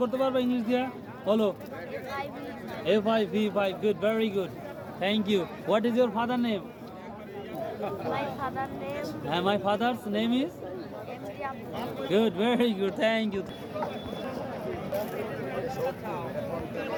করতে পারবে ইংলিশ দিয়া? বলো। A5 V5, good, very good, thank you. What is your father name? My father's name is good, very good, thank you.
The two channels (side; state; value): both; identical; correlation 1.00